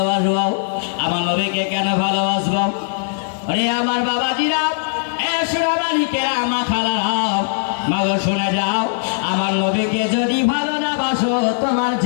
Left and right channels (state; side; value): silent; right; 66 dB below the other